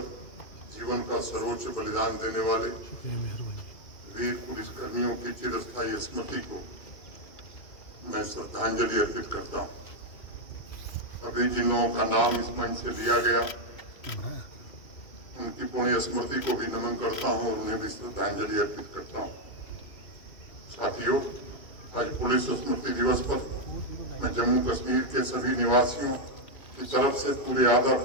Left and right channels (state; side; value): late; right; 2.2 ms